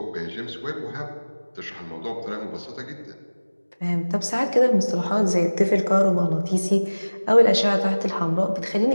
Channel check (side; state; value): both; inverted; correlation -1.00